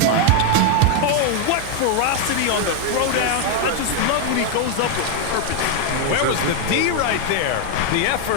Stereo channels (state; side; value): different; both; correlation 0.01